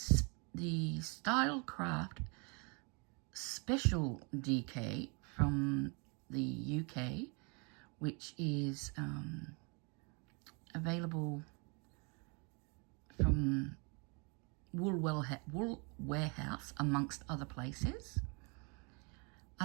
Style Craft Special DK from the UK, which is available from Wool Warehouse, amongst other places.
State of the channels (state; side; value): quieter; left; 33.2 dB